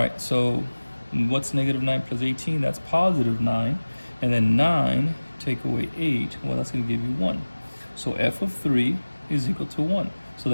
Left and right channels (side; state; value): both; inverted; correlation -1.00